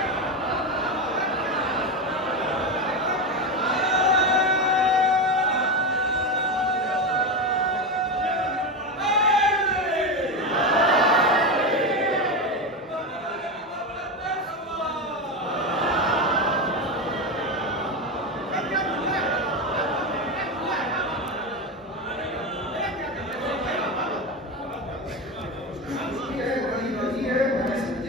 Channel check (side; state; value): both; normal; correlation 0.16